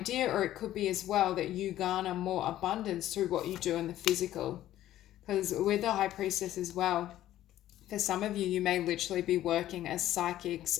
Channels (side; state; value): right; quieter; 13.3 dB